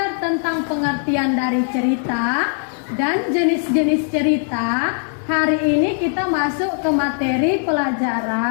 tentang pengertian dari cerita dan jenis-jenis cerita, hari ini kita masuk ke materi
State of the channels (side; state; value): right; silent; 56 dB below the other